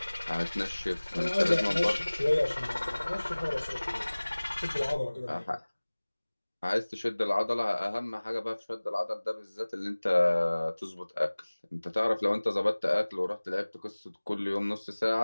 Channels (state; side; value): inverted; both; correlation -1.00